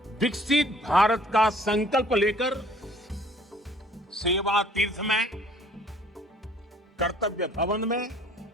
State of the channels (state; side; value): normal; both; correlation 0.56